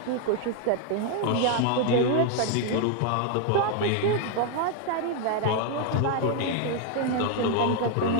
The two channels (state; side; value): different; both; correlation 0.00